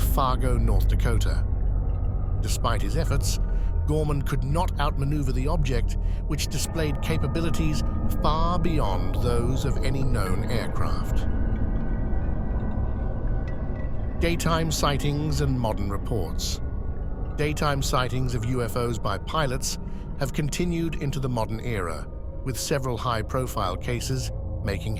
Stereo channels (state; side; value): identical; both; correlation 1.00